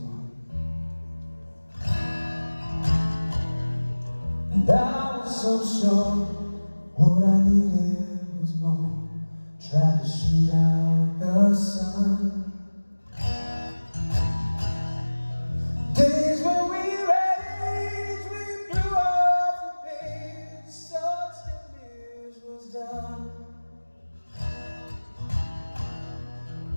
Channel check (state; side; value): inverted; both; correlation -1.00